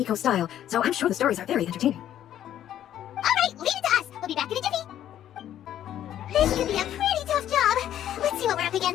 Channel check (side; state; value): right; quieter; 11.3 dB